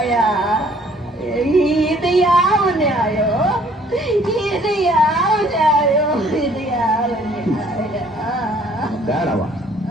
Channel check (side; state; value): both; normal; correlation 0.59